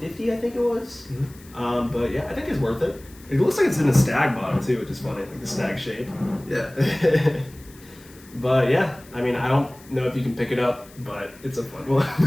I think it was. Mm-hmm. But yeah, I think it's worth it. It looks like it's in a stag bottle too, which is funny, like the stag shape. Yeah. But yeah, I mean, I don't know if you can pick it up, but it's a fun one.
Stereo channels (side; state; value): left; noise; hiss, 24 dB below the sound